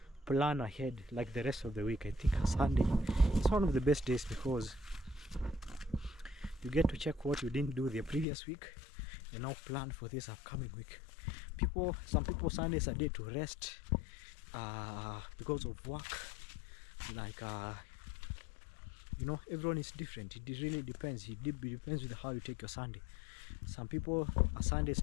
plan ahead, like the rest of the week. I think a Sunday is one of the best days, because you get to check what you didn't do the previous week and now plan for this upcoming week. Some people, Sunday is a day to rest because of work. Like you know, everyone is different. It really depends. It depends with how you take your Sunday. Some people, a Sunday is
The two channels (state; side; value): drops out; right; at 8.2 s